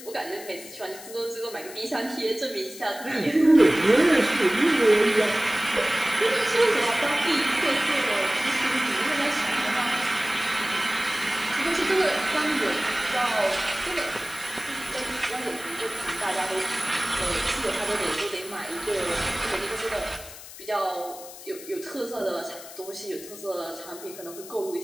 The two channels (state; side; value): noise; left; hiss, 15 dB below the sound